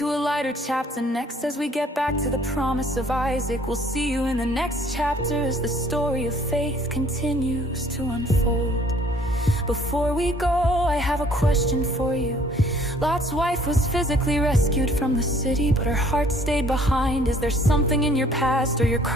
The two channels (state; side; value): normal; both; correlation 0.58